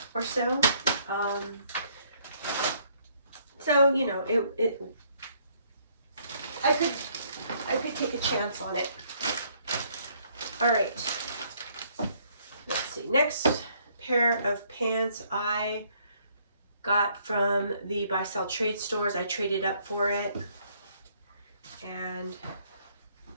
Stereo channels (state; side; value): inverted; both; correlation -0.66